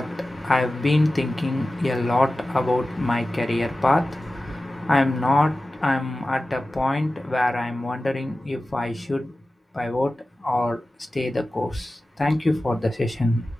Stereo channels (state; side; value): normal; both; correlation 0.95